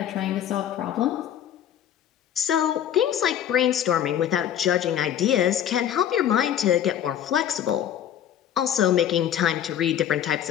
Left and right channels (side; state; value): right; quieter; 10.2 dB